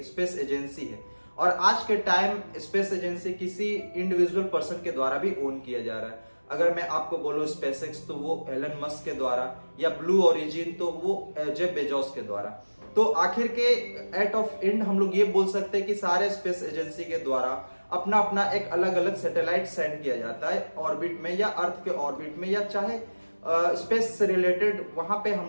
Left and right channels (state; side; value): inverted; both; correlation -1.00